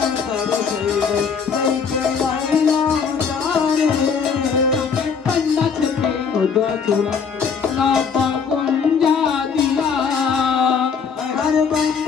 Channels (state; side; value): quieter; right; 6.1 dB